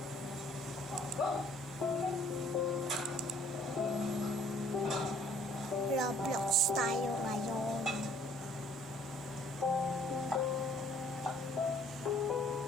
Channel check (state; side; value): normal; both; correlation 0.59